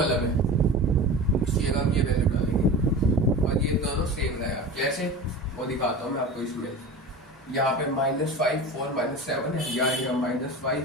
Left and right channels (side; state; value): both; normal; correlation 0.32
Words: है उसकी जगह हम ये वैल्यू डालेंगे और ये दोनों सेम रहेगा। कैसे वो दिखाता हूँ मैं आपको। इसमें यहाँ पे -5 4 -7 है, यहाँ